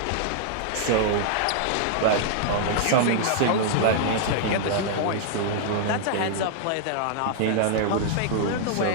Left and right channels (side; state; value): both; different; correlation -0.01